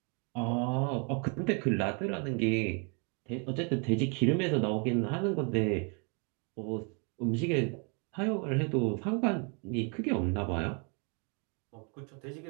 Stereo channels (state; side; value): quieter; left; 35.7 dB